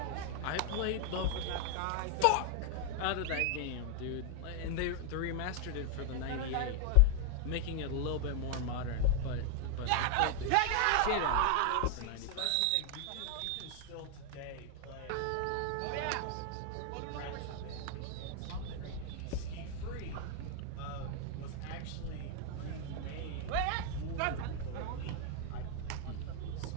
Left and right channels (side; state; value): both; different; correlation 0.00